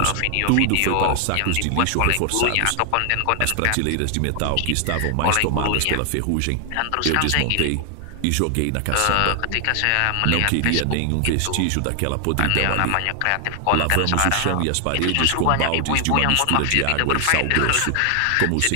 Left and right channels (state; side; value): different; both; correlation 0.00